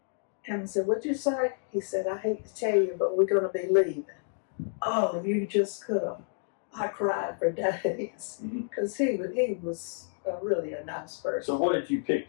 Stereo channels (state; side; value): silent; right; digital silence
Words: And I said, "What'd you say?" He said, "I hate to tell you, but we're going to be leaving." Oh, you just could have. I cried for days because he was really a nice person. So what had you